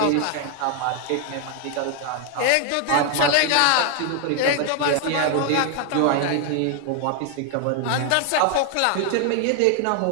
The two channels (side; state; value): both; different; correlation 0.00